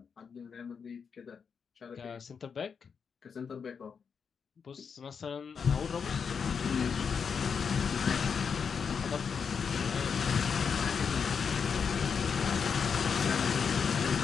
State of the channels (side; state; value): right; quieter; 6.3 dB